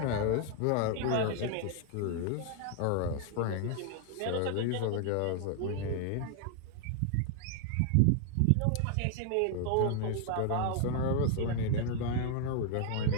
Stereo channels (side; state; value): both; different; correlation 0.00